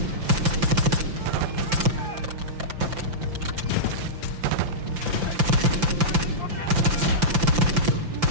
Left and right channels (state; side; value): late; left; 5.8 ms